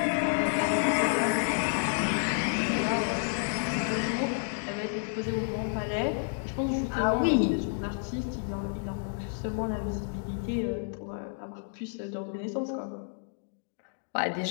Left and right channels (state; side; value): silent; right; digital silence